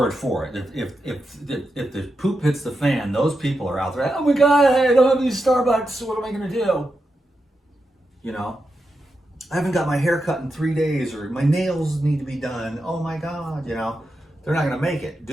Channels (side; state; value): both; normal; correlation 0.88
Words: for it. If the poop hits the fan, those people are out there. Oh my God, hey, I don't have any Starbucks. What am I gonna do? You know, I haven't got my hair cut in 3 days, or my nails need to be done. Oh my God, you know, they're not gonna make it.